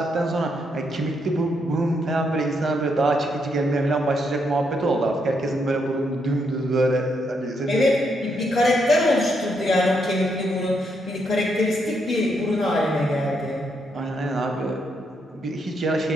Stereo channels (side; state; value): both; normal; correlation 0.77